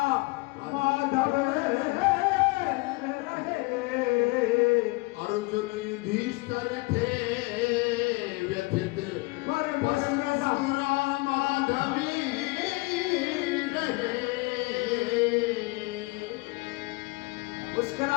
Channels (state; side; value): quieter; right; 25.5 dB